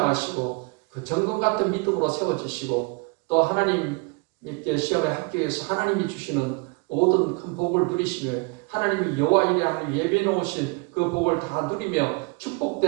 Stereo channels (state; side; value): quieter; left; 30.6 dB